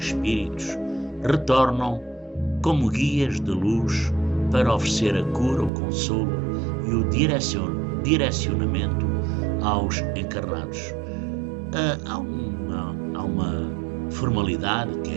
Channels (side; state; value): left; drops out; at 5.7 s